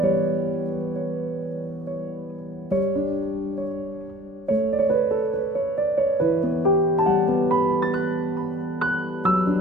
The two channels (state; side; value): normal; both; correlation 0.51